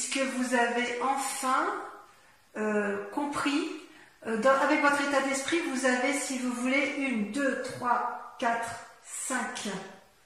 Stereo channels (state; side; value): identical; both; correlation 1.00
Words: vous avez enfin compris, avec votre état d'esprit, vous avez, si vous voulez, 1, 2, 3, 4, 5